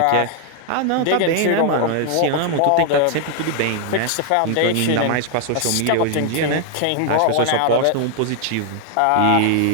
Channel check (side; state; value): both; different; correlation 0.00